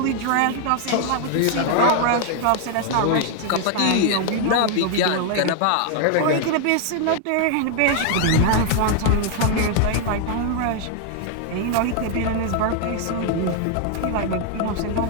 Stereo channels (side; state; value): both; different; correlation 0.00